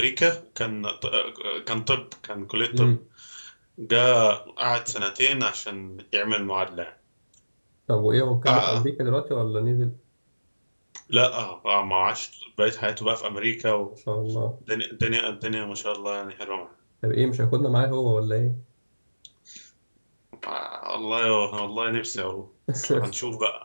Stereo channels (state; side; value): inverted; both; correlation -1.00